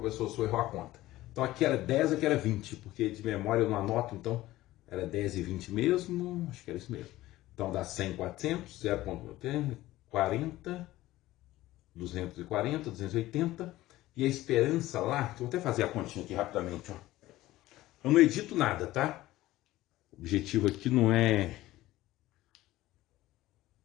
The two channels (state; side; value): quieter; right; 16.5 dB